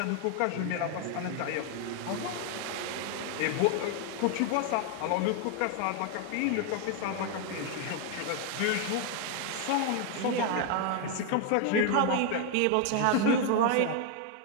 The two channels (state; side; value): different; both; correlation 0.01